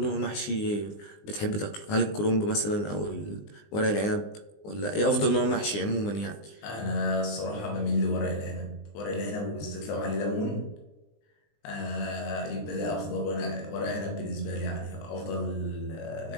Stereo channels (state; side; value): late; right; 20 ms